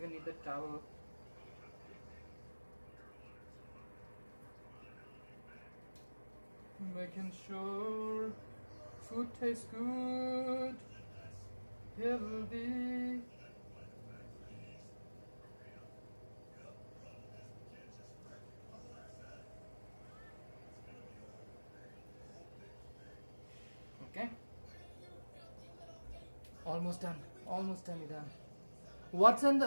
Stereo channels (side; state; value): both; inverted; correlation -1.00